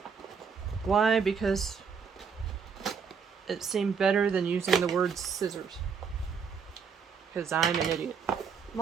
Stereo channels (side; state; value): left; quieter; 6.2 dB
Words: Why? Because it seemed better than using the word scissors. Because I'm an idiot. I'm